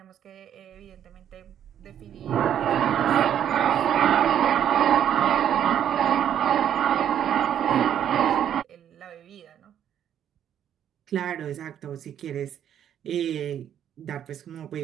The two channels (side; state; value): left; quieter; 9.8 dB